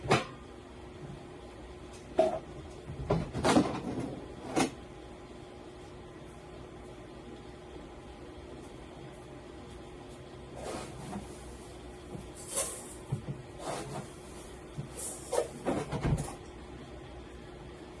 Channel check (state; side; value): identical; both; correlation 1.00